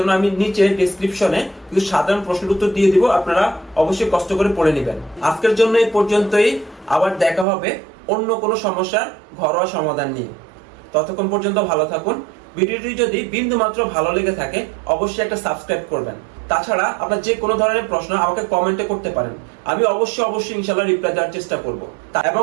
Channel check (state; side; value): drops out; left; at 7.5 s